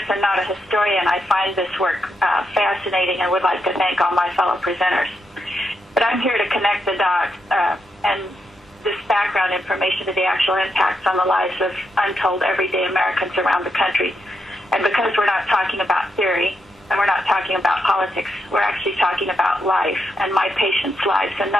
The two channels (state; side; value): normal; both; correlation 0.82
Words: and not a historian, I find this work fascinating and would like to thank all my fellow presenters. But I'm here to connect the dots and this background information to the actual impacts on the lives of untold everyday Americans around the country. And because we're not talking about theory and we're not talking about politics, we're actually talking about life and my patients' lives, and